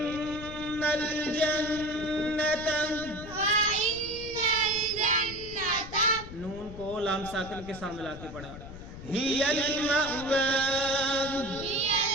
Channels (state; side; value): noise; left; rumble, 13 dB below the sound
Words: الْجَنَّةَ، نون کو لام ساکن کے سامنے لا کے پڑھا۔ هِيَ الْمَأْوَى،